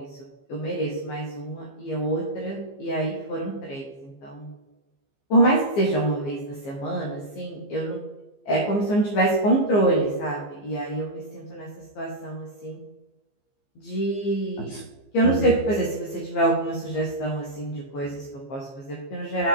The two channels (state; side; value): late; right; 15 ms